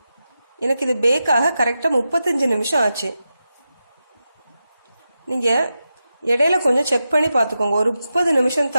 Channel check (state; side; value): inverted; both; correlation -0.90